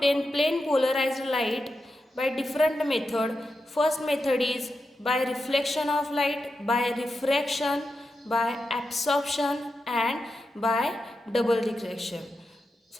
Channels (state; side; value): normal; both; correlation 0.88